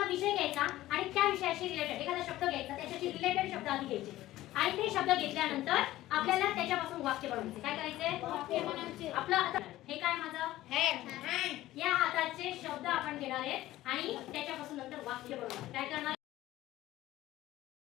विषय घ्यायचा आणि त्या विषयाशी रिलेटेड एखादा शब्द घ्यायचा, त्याच्याशी रिलेटेड शब्द आधी घ्यायचे आणि ते शब्द घेतल्यानंतर आपल्याला त्याच्यापासून वाक्य बनवायचे. काय करायचे? आपलं आता हे काय माझं हँड. या हाताचे शब्द आपण घेणार आहेत आणि त्याच्यापासून नंतर वाक्य बनवणार. काय करणार?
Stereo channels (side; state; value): right; quieter; 15.6 dB